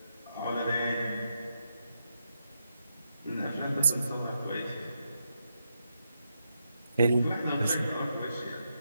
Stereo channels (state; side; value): inverted; both; correlation -0.83